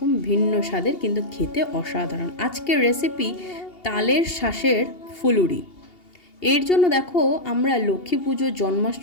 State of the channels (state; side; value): late; right; 2.8 ms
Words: ভিন্ন স্বাদের, কিন্তু খেতে অসাধারণ। আজকের রেসিপি তালের শাঁসের ফুলুরি। এর জন্য দেখো, আমরা লক্ষ্মী পুজো